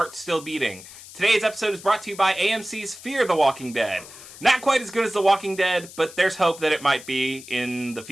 Still Beating. Today's episode is brought to you by AMC's Fear the Walking Dead. Not quite as good as The Walking Dead, but there's hope that it might be in the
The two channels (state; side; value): noise; left; hiss, 17 dB below the sound